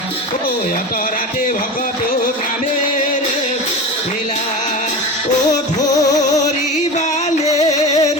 ও অতৰাতে ভকত গ্ৰামে লীলা ও ধৰিবালে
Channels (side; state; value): both; normal; correlation 0.28